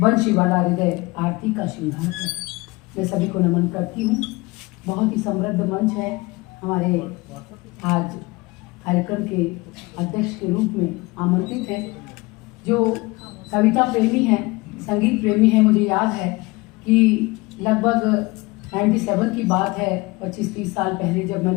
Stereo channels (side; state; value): right; quieter; 23.0 dB